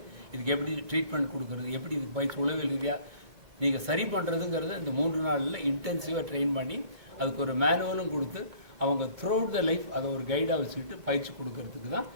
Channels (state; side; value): late; left; 2.2 ms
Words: இதுக்கு எப்படி ட்ரீட்மெண்ட் கொடுக்குறது, எப்படி இதுக்கு பயிற்சி உளவியல் ரீதியாக நீங்கள் சரி பண்ணுறதுங்கிறத இந்த 3 நாளில் இன்டென்சிவாக ட்ரெயின் பண்ணி அதுக்கு ஒரு மேனுவலும் கொடுத்து அவங்க த்ரூஅவுட் த லைஃப் அதை ஒரு கைடாக வச்சுக்கிட்டு பயிற்சி கொடுக்கறதுக்கு தான்